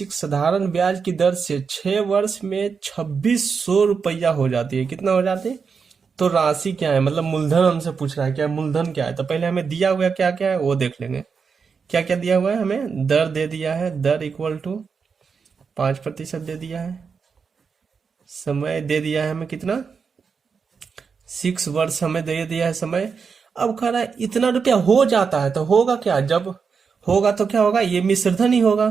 साधारण ब्याज की दर से 6 वर्ष में 2600 रुपया हो जाती है। कितना हो जाती है? तो राशि क्या है, मतलब मूलधन हमसे पूछ रहा है, क्या मूलधन क्या है। तो पहले हमें दिया हुआ क्या क्या है वो देख लेंगे। क्या क्या दिया हुआ है हमें? दर दे दिया है, दर इक्वल टू 5% दे दिया है। समय दे दिया है हमें कितना, 6 वर्ष हमें दे दिया है समय। अब कह रहा है इतना रुपया हो जाता है, तो होगा क्या? जब होगा तो क्या होगा? ये मिश्रधन ही होगा,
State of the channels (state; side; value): quieter; left; 5.7 dB